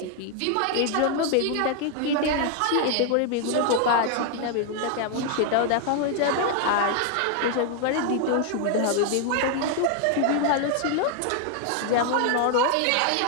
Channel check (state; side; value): different; both; correlation 0.00